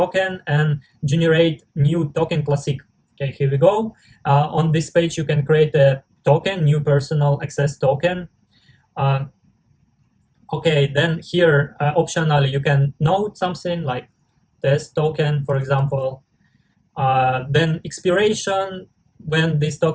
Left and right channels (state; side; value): identical; both; correlation 1.00